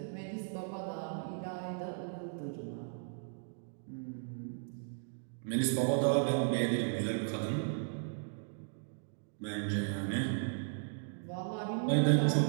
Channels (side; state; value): left; silent; digital silence